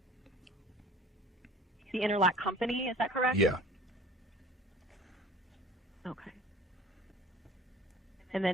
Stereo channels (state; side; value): normal; both; correlation 0.46